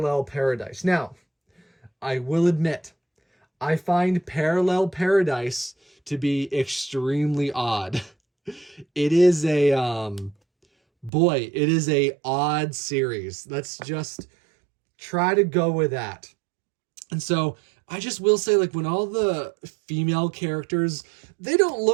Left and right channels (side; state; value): left; drops out; at 11.1 s